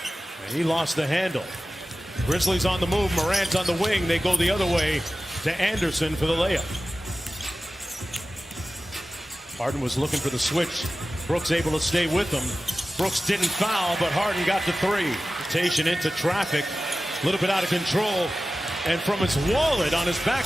And he lost the handle. Grizzlies on the move. Morant on the wing. They go the other way to Anderson for the layup. Harden was looking for the switch. Brooks able to stay with him. Brooks didn't foul, but Harden got the three. Rotation into traffic. A little bit out of control. And from his wallet on his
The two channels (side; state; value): both; normal; correlation 0.95